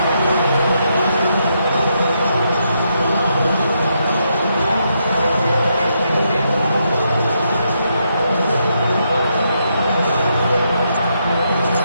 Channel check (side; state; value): both; inverted; correlation -0.79